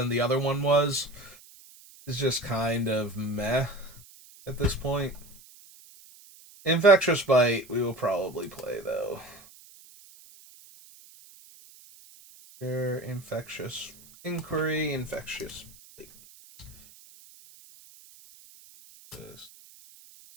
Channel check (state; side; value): noise; right; hiss, 23 dB below the sound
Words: the other one was, is just kind of meh at this point. Infectious Bite we will probably play though. Infectious Inquiry, Infectious Bite.